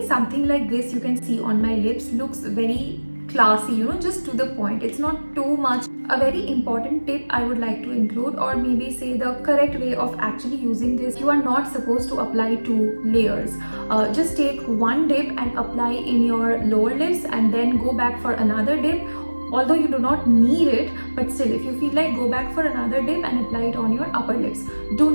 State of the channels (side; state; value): both; inverted; correlation -1.00